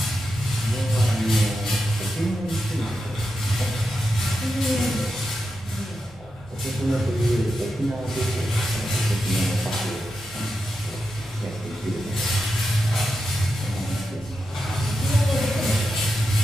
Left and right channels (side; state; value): both; normal; correlation 0.88